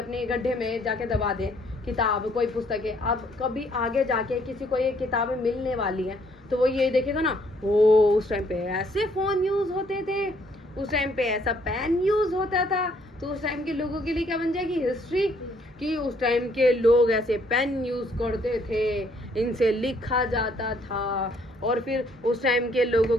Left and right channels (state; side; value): normal; both; correlation 0.66